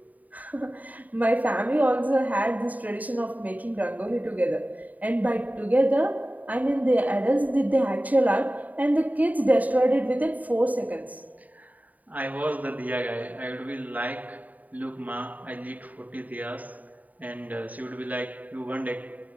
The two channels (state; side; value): late; left; 0.075 ms